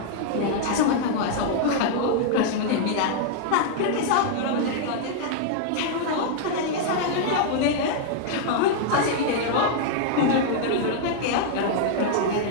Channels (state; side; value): different; both; correlation -0.01